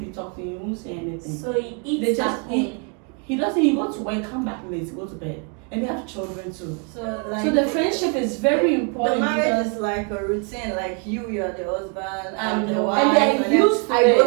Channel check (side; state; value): left; quieter; 36.1 dB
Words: you talk to him, you won't say anything. So he eats They at just home. eat. He doesn't, he go to work, come back late, go to bed. And they have children too. So like So the friendship is very the important marriage because is like a routine, like you are the husband, And I'm the and wife, they're then used to I go